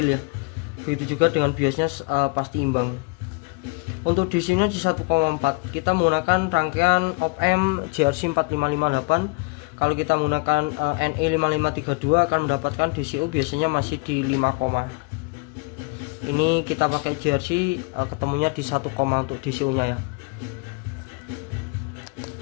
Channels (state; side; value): quieter; right; 28.4 dB